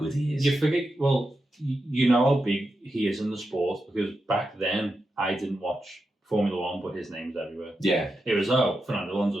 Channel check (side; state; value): both; normal; correlation 0.88